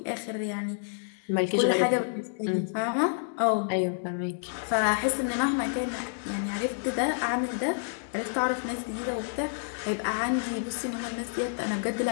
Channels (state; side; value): silent; right; digital silence